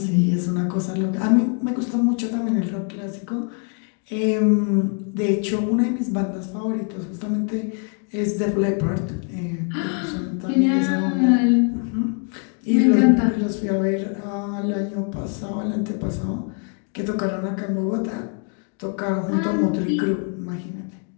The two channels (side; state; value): right; quieter; 39.9 dB